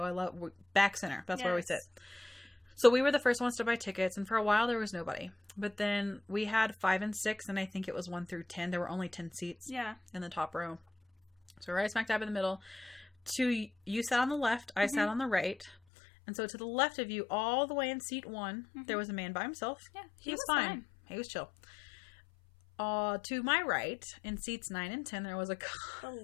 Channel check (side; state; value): right; drops out; at 15.8 s